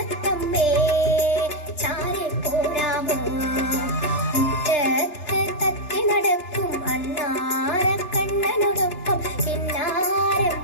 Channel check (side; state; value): right; late; 3.3 ms